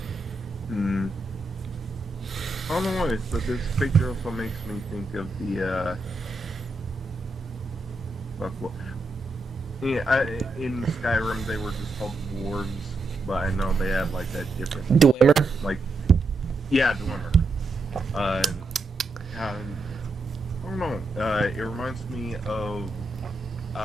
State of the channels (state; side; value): quieter; left; 3.0 dB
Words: I don't know why, but this picture also makes me think of the, in Skyrim they were just called dwarves, but I know they had like that different... Dwemer? Like, yeah, Dwemer. I don't know, it reminds me of,